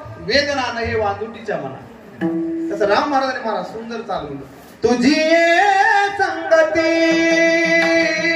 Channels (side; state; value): both; identical; correlation 1.00